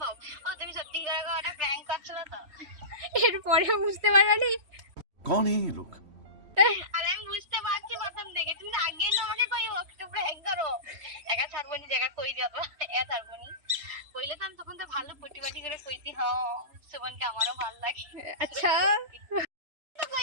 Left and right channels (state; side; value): late; left; 3.1 ms